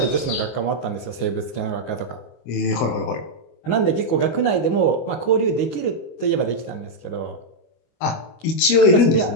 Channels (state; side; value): late; right; 25 ms